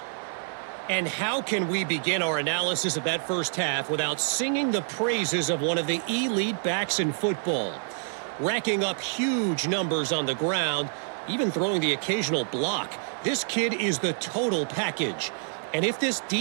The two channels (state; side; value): silent; left; 60 dB below the other